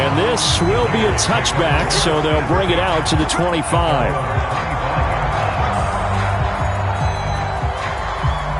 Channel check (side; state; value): both; identical; correlation 1.00